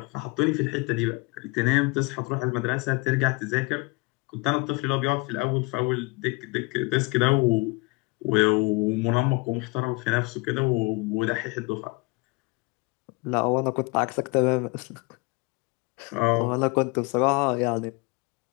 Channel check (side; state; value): right; quieter; 27.2 dB